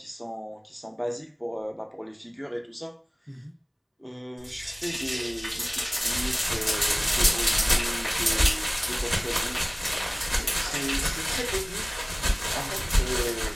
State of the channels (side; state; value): both; identical; correlation 1.00